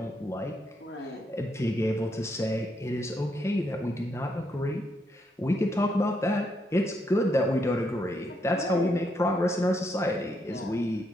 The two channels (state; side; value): normal; both; correlation 0.77